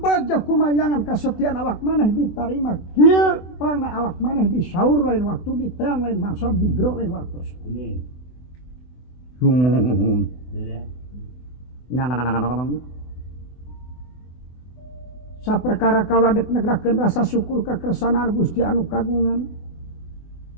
kumayangan kasetiaan awak maneh ditarima kieu pana awak maneh disaur lain waktu diteang lain maksud digro lain waktu sumuhun saperkara kaula dek negrakeun rasa syukur ka kersanaan Gusti anu kagungan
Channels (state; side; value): late; right; 24 ms